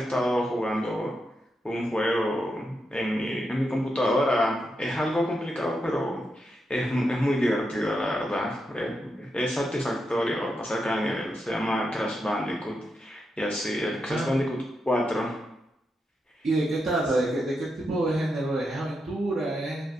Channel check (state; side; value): normal; both; correlation 0.85